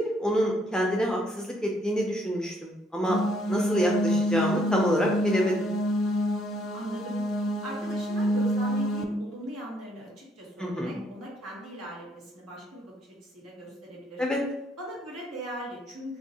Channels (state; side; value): normal; both; correlation 0.69